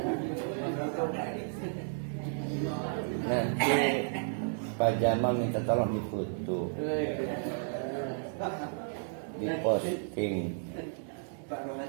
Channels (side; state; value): left; silent; digital silence